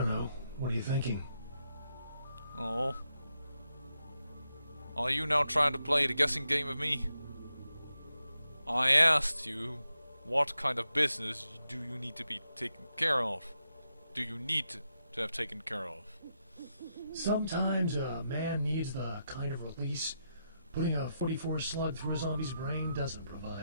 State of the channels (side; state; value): both; inverted; correlation -0.85